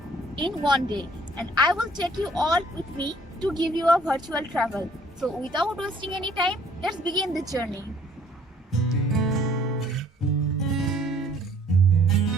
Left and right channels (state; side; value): normal; both; correlation 0.59